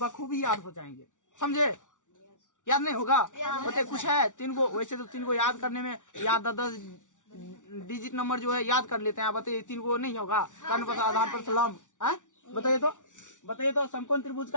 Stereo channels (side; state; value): right; late; 0.87 ms